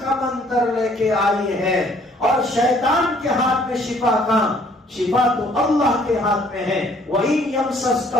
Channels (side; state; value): both; normal; correlation 0.61